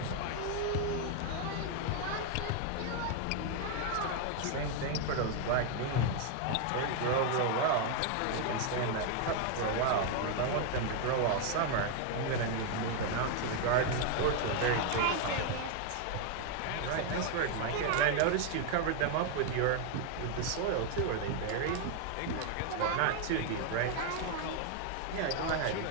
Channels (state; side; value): different; both; correlation 0.01